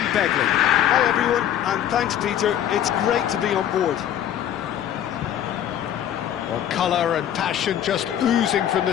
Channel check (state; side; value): quieter; right; 10.6 dB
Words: Begley. Hi everyone, and thanks Peter, it's great to be on board. Well, colour and passion just oozing from the